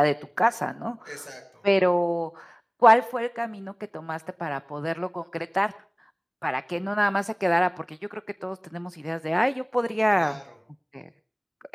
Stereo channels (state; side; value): identical; both; correlation 1.00